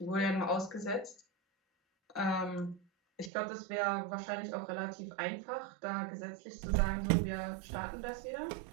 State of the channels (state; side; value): drops out; left; at 3.3 s